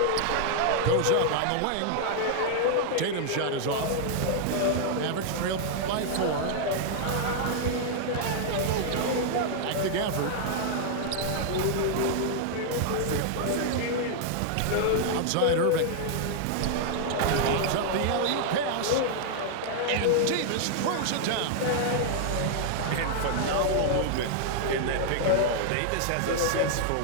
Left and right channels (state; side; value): different; both; correlation -0.01